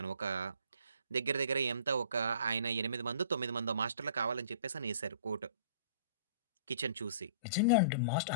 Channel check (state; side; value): inverted; both; correlation -0.50